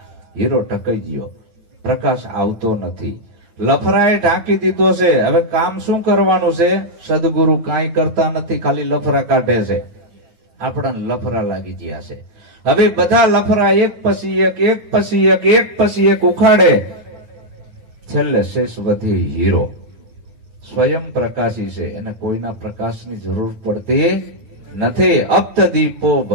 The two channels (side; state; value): left; late; 9.5 ms